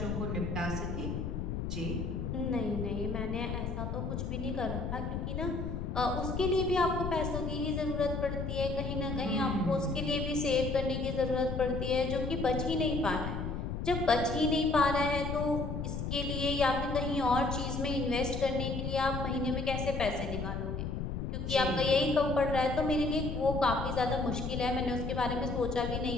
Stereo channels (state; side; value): noise; left; rumble, 3 dB below the sound